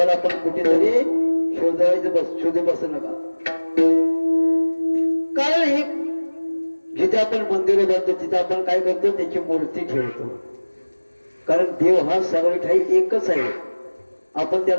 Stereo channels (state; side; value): inverted; both; correlation -1.00